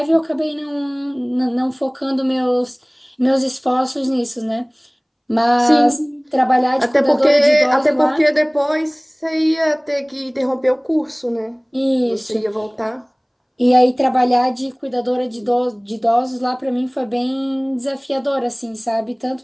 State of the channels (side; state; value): both; identical; correlation 1.00